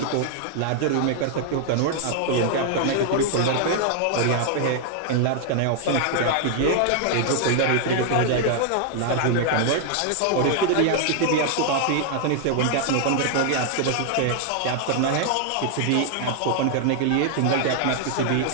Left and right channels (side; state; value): both; different; correlation 0.00